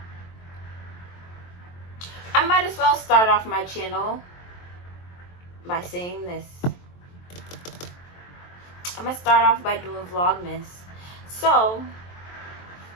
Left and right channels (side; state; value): right; late; 23 ms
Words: I might as well start off my channel by saying this. I'm gonna start off by doing Vlogmas. So